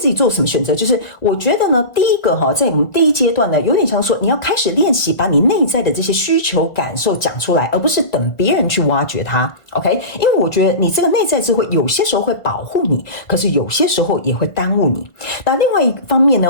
己做什么选择。就是我觉得呢，第一个哈，在我们第一阶段呢，有点像说你要开始练习把你内在的这些需求感受讲出来，而不是等别人去挖掘它。OK， 因为我觉得你这个内在智慧有些时候会保护你，可是有些时候也会耽误你。那另外一方面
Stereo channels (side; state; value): right; late; 1.4 ms